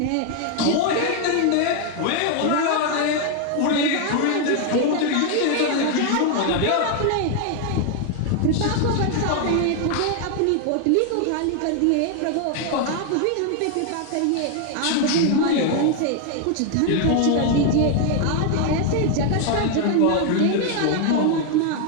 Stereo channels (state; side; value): different; both; correlation 0.00